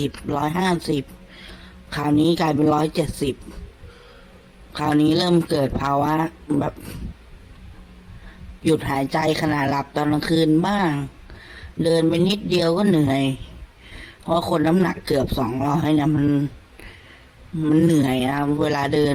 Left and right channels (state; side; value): identical; both; correlation 1.00